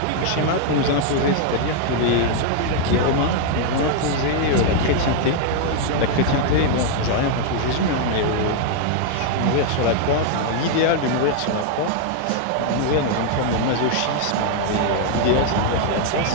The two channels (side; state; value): both; different; correlation 0.00